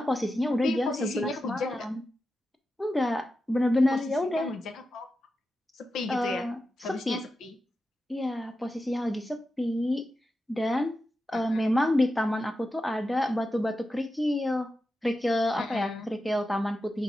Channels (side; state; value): both; normal; correlation 0.90